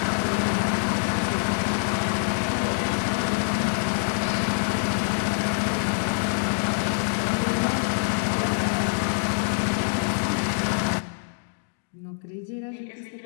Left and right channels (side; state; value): right; silent; digital silence